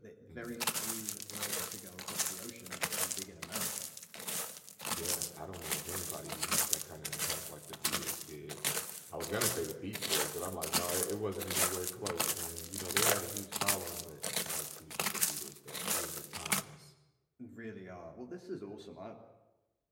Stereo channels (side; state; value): both; identical; correlation 1.00